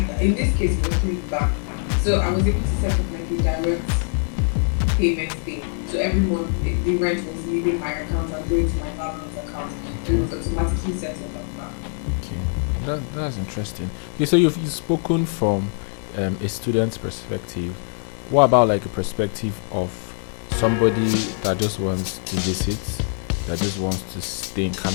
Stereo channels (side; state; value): right; silent; 56 dB below the other